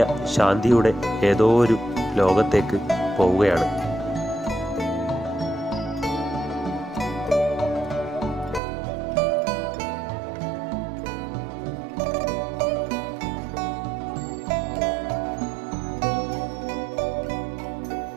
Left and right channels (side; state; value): left; drops out; at 8.6 s